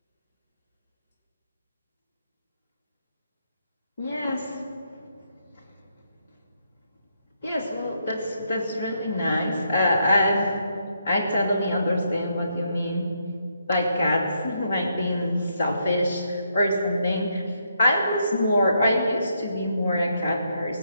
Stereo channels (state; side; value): inverted; both; correlation -0.77